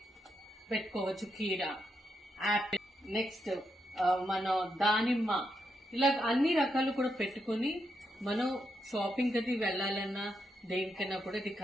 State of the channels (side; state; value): both; normal; correlation 0.82